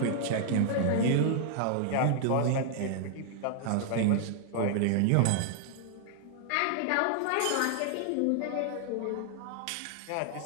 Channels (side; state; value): both; different; correlation 0.00